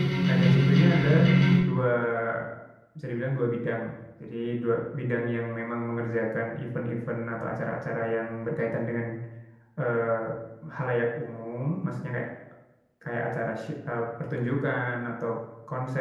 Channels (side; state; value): both; identical; correlation 1.00